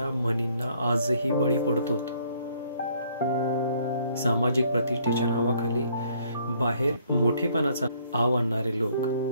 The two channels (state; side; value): inverted; both; correlation -0.64